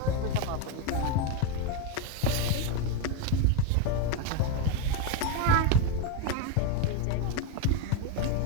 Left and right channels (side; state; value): both; different; correlation 0.03